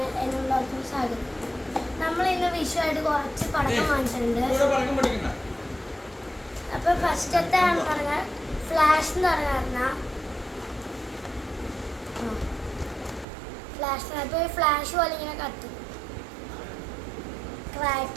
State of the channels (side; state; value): left; drops out; at 13.2 s